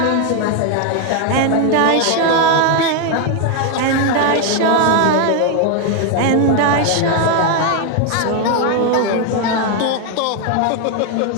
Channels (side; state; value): both; different; correlation 0.01